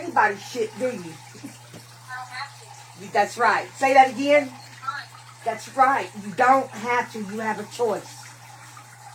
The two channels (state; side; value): identical; both; correlation 1.00